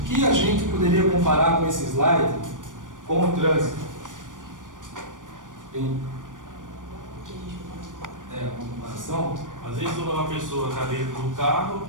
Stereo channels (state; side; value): late; left; 0.88 ms